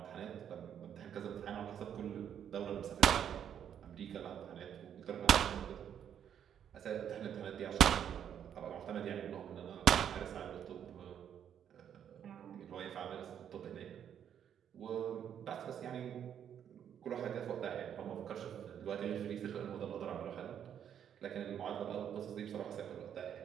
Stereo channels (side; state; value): left; quieter; 9.1 dB